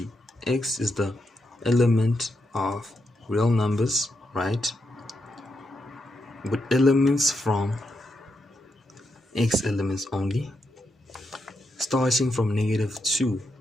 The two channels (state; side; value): normal; both; correlation 0.83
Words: x is the element of real numbers, right? With elements from x elements only, starting from -2.